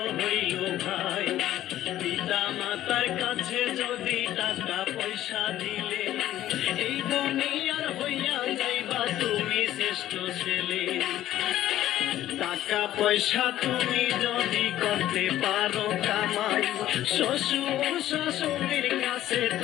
হইল ভাই। পিতা মাতার কাছে যদি টাকা পয়সা দিলে, এই দুনিয়ার হইয়া যাইবা তুমি শ্রেষ্ঠ ছেলে। টাকা পয়সা তুমি যদি করতে পারো কামাই, শ্বশুর শাশুড়ির কাছে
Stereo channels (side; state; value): right; quieter; 13.3 dB